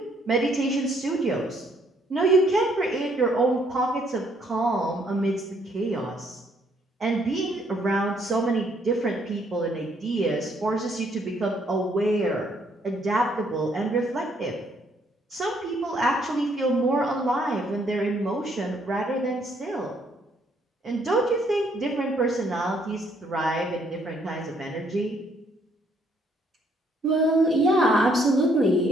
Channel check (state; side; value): normal; both; correlation 0.68